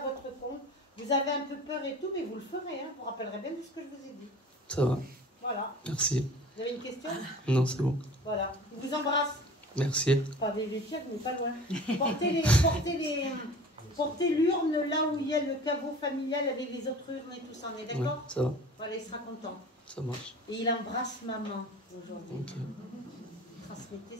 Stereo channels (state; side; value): normal; both; correlation 0.42